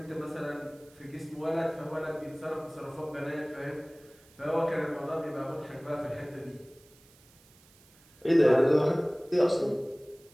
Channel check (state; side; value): noise; right; hiss, 28 dB below the sound